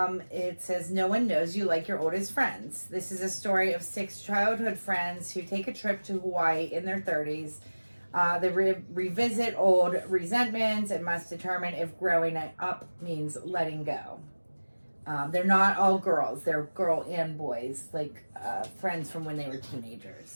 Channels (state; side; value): inverted; both; correlation -1.00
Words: It says, no one knows you like your oldest friends. This is a story of 6 childhood friends who take a trip to Hawaii in their 30s They revisit old resentments and must determine if growing up means letting go. They're not all girls. They're girl and boys, like friends from when they were